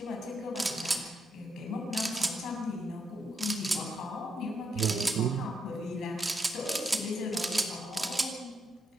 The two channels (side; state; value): both; normal; correlation 0.80